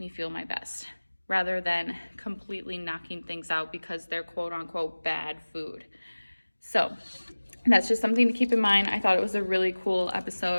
me feel my best, rather than completely knocking things out because they're quote unquote bad food. So that's just something to keep in mind. I thought it was a really cool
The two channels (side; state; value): both; inverted; correlation -1.00